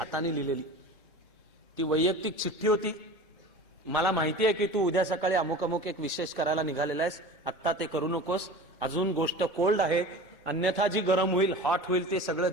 लिहिलेली. ती वैयक्तिक चिठ्ठी होती, मला माहिती आहे की तू उद्या सकाळी अमुक अमुक एक विशेष करायला निघालेला आहेस, आत्ता ते करू नकोस, अजून गोष्ट कोल्ड आहे, अन्यथा जी गरम होईल, हॉट होईल, ते सगळं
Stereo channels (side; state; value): both; normal; correlation 0.36